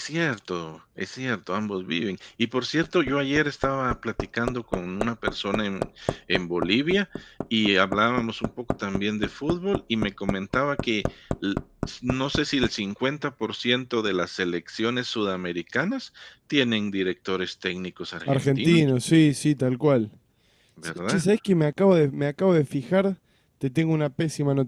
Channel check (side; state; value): both; identical; correlation 1.00